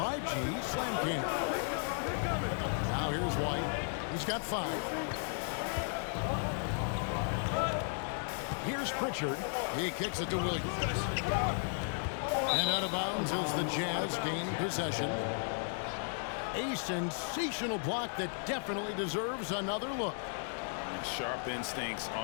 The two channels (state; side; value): silent; right; 54 dB below the other